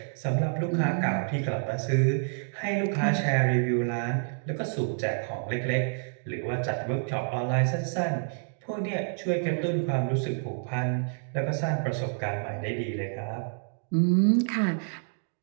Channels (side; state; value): left; silent; 59 dB below the other